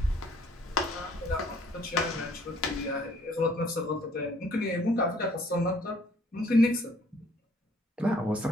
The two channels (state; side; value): normal; both; correlation 0.61